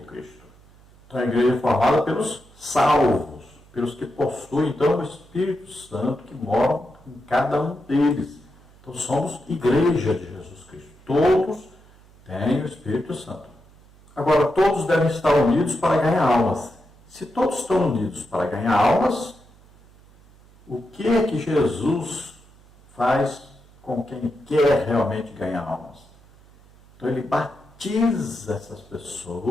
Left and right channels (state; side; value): noise; right; hum, 26 dB below the sound